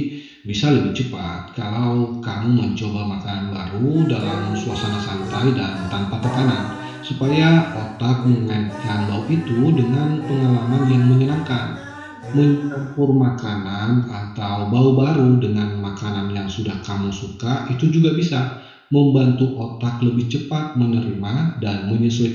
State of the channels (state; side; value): identical; both; correlation 1.00